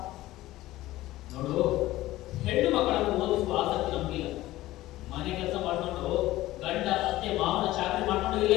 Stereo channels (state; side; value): quieter; right; 16.5 dB